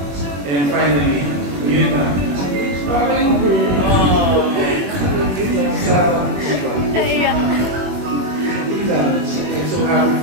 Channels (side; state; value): left; late; 21 ms